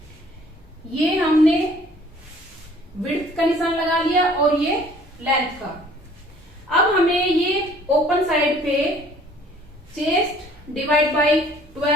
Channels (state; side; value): normal; both; correlation 0.55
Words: ये हमने विड्थ का निशान लगा लिया और ये लेंथ का। अब हमें ये ओपन साइड पे चेस्ट डिवाइड बाय